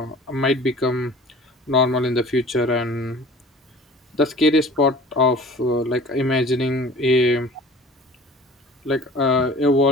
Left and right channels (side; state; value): both; normal; correlation 0.44